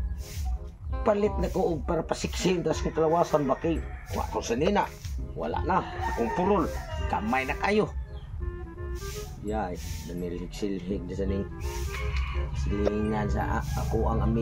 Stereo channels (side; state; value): both; identical; correlation 1.00